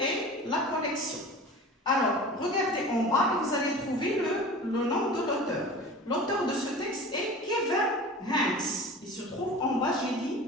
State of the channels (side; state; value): both; normal; correlation 0.37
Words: la collection. Alors, regardez en bas et vous allez trouver le nom de l'auteur. L'auteur de ce texte est Kevin Hanks. Il se trouve en bas, j'ai